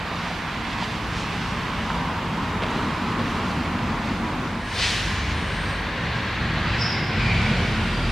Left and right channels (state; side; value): normal; both; correlation 0.96